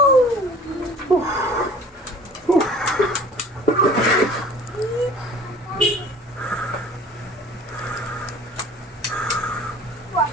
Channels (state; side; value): normal; both; correlation 0.46